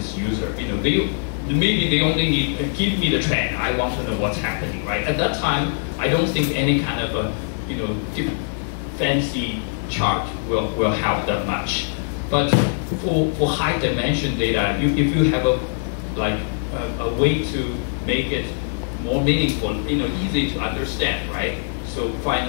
user. Maybe they only need give me the trend. I want to know what's happening, right? At that time, I don't think any kind of a fancy chart will help that much. But for high dimension data, if you have a way to make it more meaningful, easy to understand, right? So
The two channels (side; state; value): right; silent; digital silence